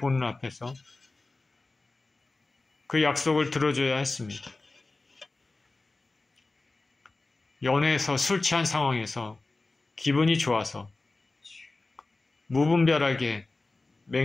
앞에서 그 약속을 들어줘야 했습니다. 연애에서 술 취한 상황에서 기분이 좋아서 무분별하게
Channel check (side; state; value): right; quieter; 3.3 dB